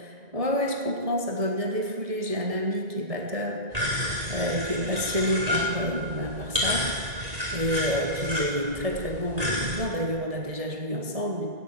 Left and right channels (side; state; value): left; late; 1.9 ms